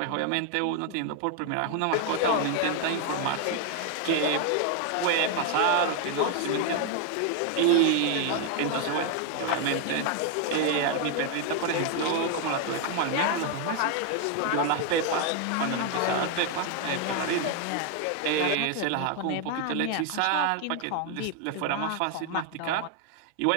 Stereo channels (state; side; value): different; both; correlation 0.01